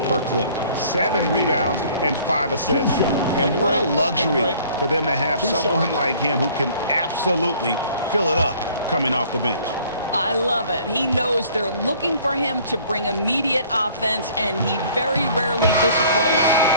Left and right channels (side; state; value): both; inverted; correlation -0.55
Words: clip, 7 rebounds, and 5 assists. And what a luxury for them to have someone like him who can absolutely fill it up coming off the bench. I love it. He knows they're looking for him to bring immediate offense, and he very rarely disappoints.